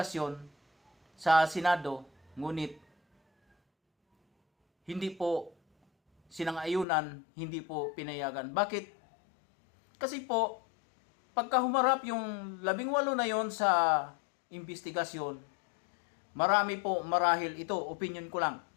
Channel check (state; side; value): drops out; right; at 6.9 s